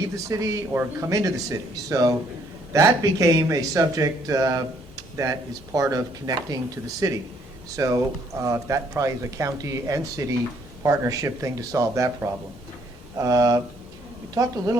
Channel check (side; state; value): both; normal; correlation 0.66